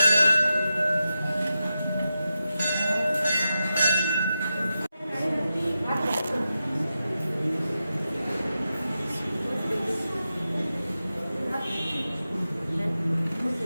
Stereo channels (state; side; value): inverted; both; correlation -0.90